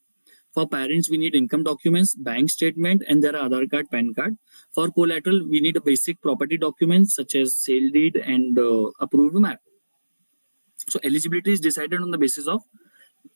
For parents, we need income documents, bank statement, and their Aadhaar card, PAN card. For collateral, we need a basic property documents such as sale deed and approved map. So eligibility is decided on the basis of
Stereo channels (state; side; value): inverted; both; correlation -1.00